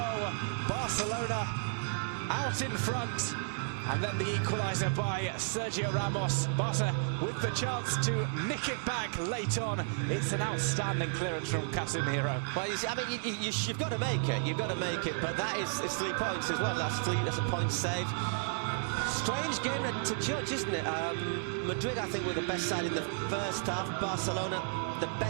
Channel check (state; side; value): silent; left; digital silence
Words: Barcelona out in front. And then the equaliser by Sergio Ramos. Barca with the chance to nick it back late on. It's an outstanding clearance from Casemiro. Well, you see, I mean, you've got to make it. You've got to make it. But that it's 3 points as well. That's a point saved. Strange game to judge, isn't it? Madrid, I think, were the best side in the first half. Barcelona, the